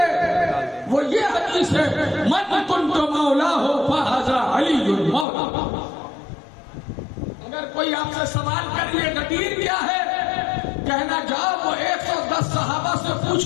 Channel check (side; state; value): right; drops out; at 5.2 s